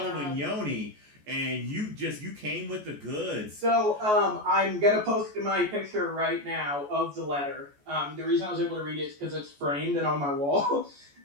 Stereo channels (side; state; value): left; late; 14 ms